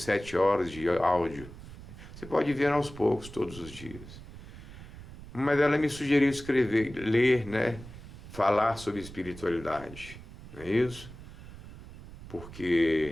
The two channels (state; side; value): noise; right; rumble, 15 dB below the sound